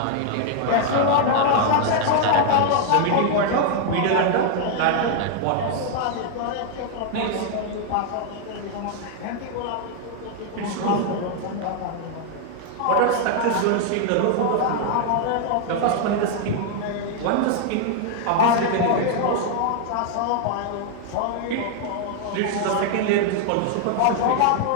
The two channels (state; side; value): different; both; correlation 0.00